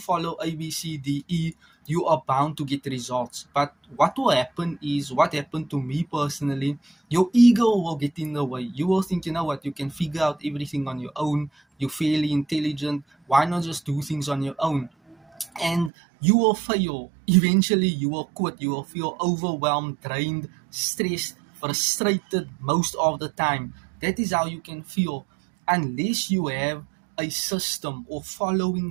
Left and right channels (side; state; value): left; drops out; at 15.9 s